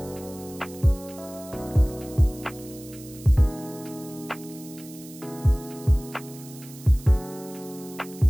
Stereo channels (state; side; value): noise; right; hiss, 18 dB below the sound